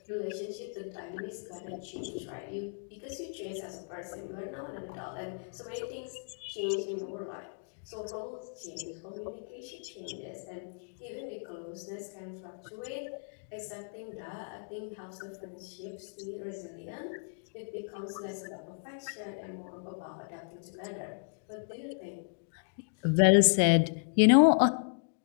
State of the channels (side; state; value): right; silent; digital silence